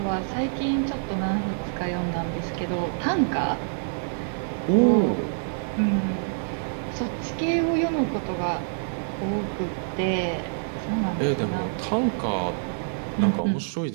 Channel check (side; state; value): left; silent; digital silence